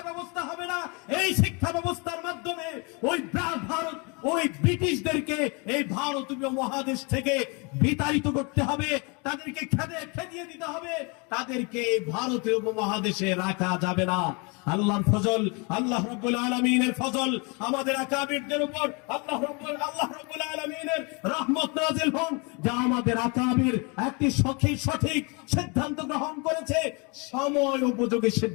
ব্যবস্থা হবে না, এই শিক্ষা ব্যবস্থার মাধ্যমে ওই ভারত ওই ব্রিটিশদেরকে এই ভারতীয় মহাদেশ থেকে বিতাড়িত করতে হবে, তাদেরকে খেদিয়ে দিতে হবে, তাদেরকে এই ভারতীয় উপমহাদেশে রাখা যাবে না। আল্লাহর ফজল, আল্লাহ রাব্বুল আলামিনের ফজল আমাদের আকাবিরদের উপর, আল্লাহ রাব্বুল আলামিনের রহমত নাযিল হোক, যা আমাদের আকাবির একটি সঠিক সিদ্ধান্ত গ্রহণ করেছে, সময় উপযোগী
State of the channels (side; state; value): right; quieter; 31.2 dB